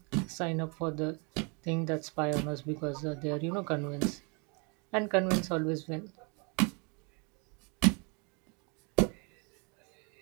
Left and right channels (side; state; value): left; quieter; 33.1 dB